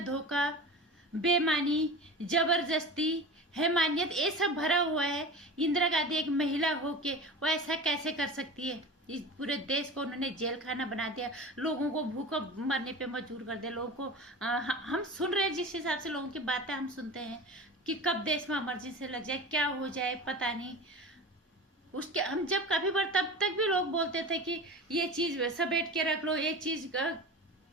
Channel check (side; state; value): both; normal; correlation 0.32